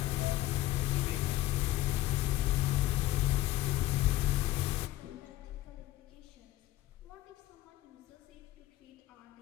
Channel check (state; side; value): quieter; right; 15.5 dB